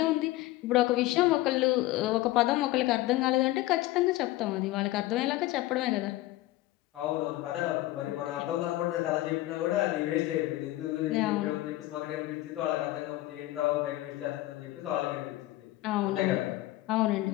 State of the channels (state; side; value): quieter; right; 17.1 dB